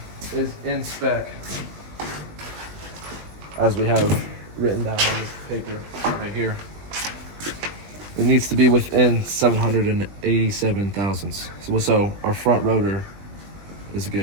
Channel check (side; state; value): left; late; 20 ms